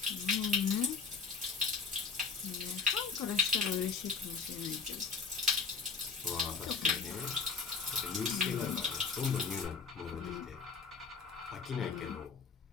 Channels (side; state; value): right; quieter; 5.0 dB